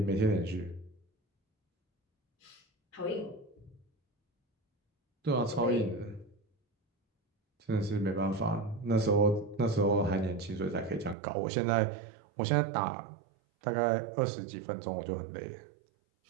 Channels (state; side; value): drops out; left; at 11.2 s